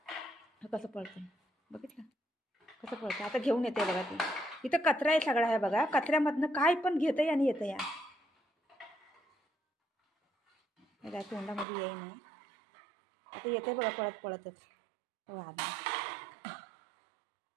कसं पळतंय बघितलं कसं पळतं. आता घेऊन येते बघा ती. इथं कचरा आहे सगळा आहे बघा, कचऱ्यामधनं काय पण घेतंय आणि येतं या. काय तोंडामध्ये येई नाही. आता येते बघा पळत पळतच.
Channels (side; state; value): left; drops out; at 11.7 s